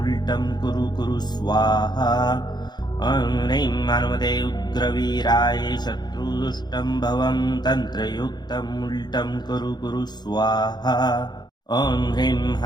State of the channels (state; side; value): late; right; 0.20 ms